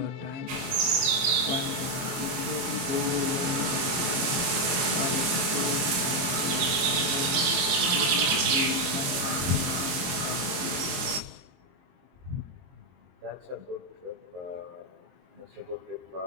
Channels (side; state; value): left; late; 23 ms